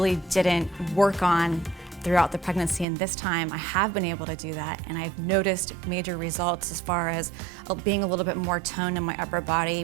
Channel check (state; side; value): drops out; left; at 2.9 s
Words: didn't work on throughout the pregnancy, and this time I have been able to do that, and I've noticed major results as far as being a little bit more toned in my upper body.